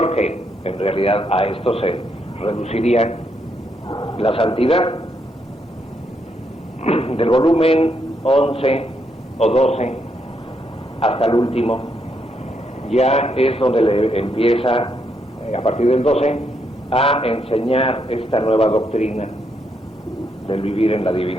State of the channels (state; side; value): normal; both; correlation 0.77